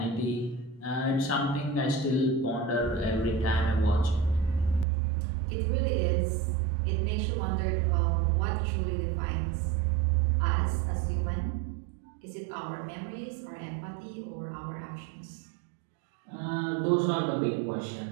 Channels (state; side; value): drops out; left; at 4.9 s